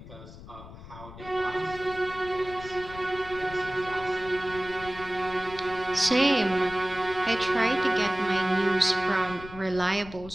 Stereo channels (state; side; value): noise; left; rumble, 15 dB below the sound